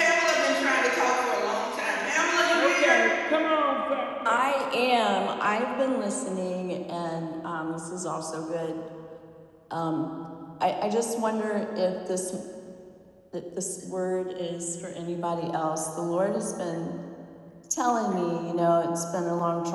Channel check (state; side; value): identical; both; correlation 1.00